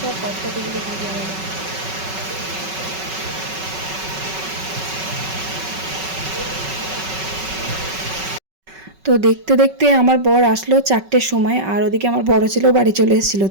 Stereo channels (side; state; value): left; late; 5.3 ms